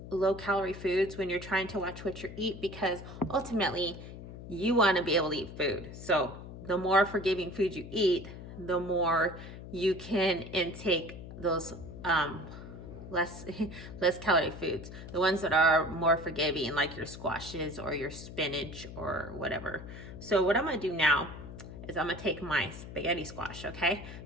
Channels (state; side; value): noise; left; hum, 12 dB below the sound